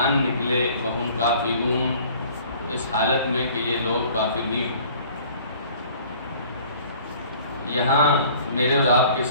نکلے، وہم کافرون، اس حالت میں کہ یہ لوگ کافر ہی ہوں. یہاں میرے اور آپ کے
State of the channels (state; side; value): inverted; both; correlation -0.51